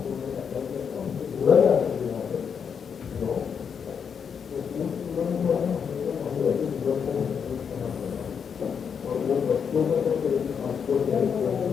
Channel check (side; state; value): right; quieter; 6.9 dB